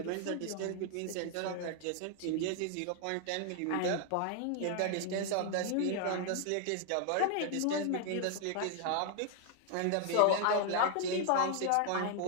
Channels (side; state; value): both; different; correlation 0.00